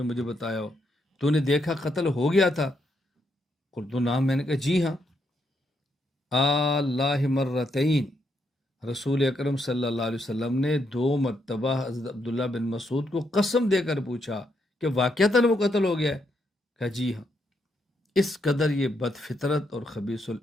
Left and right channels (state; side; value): normal; both; correlation 0.78